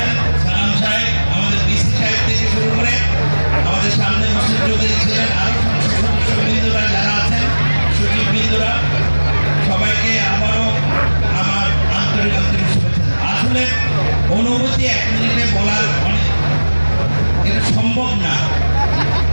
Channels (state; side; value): inverted; both; correlation -1.00